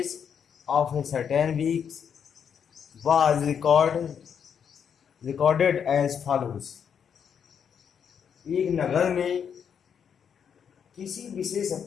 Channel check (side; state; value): right; quieter; 7.6 dB